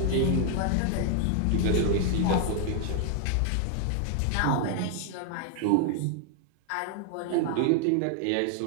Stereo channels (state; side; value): different; both; correlation 0.00